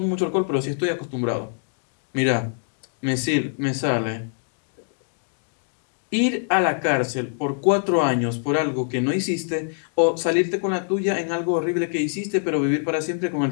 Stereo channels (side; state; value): right; silent; digital silence